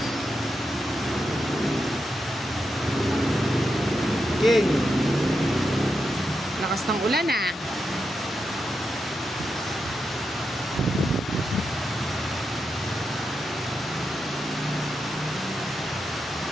King. Lakas ng ulan ah.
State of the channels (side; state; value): both; normal; correlation 0.86